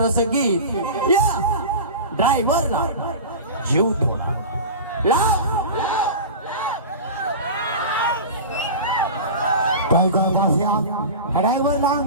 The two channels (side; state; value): both; inverted; correlation -0.31